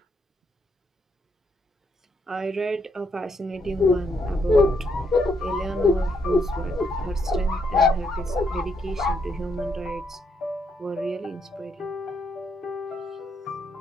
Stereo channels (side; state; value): both; normal; correlation 0.75